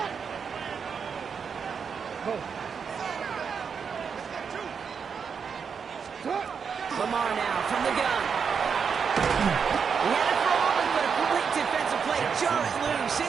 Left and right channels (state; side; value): quieter; left; 6.3 dB